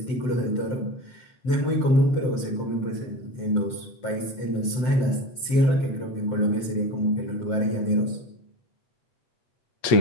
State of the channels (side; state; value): right; late; 7.8 ms